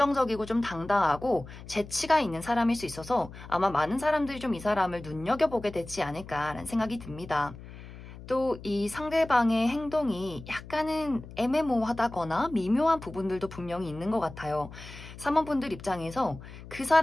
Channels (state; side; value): noise; left; hum, 15 dB below the sound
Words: 좀 당당하고 재치가 있는 사람일 수 있어서 아마 많은 사람들이 좀 이 사람을 눈여겨보게 되지 않을까라는 생각이 듭니다. 또 이 상대방의 행동이 약간은 애매모호하다거나 미묘한 부분들도 분명히 있는 것 같아요. 3번 분들 입장에서 그